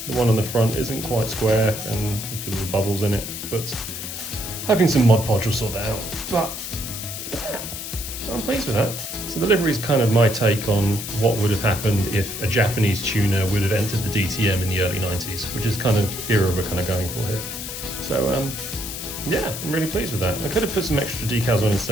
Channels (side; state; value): left; noise; hiss, 7 dB below the sound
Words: one on the front isn't quite square and there's a few little bubbles in it, but hoping some Mod Podge will sort that out. But yeah, I'm pleased with that. So the livery is kind of my take on what would have happened if a Japanese tuner would have entered the DTM in the early 90s, which is kind of era we're kind of going for here. So yeah, I'm really pleased with that. I could have put some extra decals on in